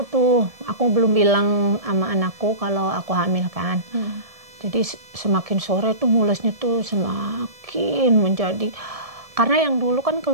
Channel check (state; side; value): late; left; 1.7 ms